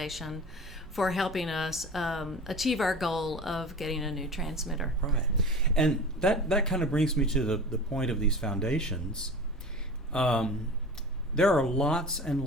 for helping us achieve our goal of getting a new transmitter. Right. And that kind of brings me to the point of these foundations. There are lots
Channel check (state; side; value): normal; both; correlation 0.35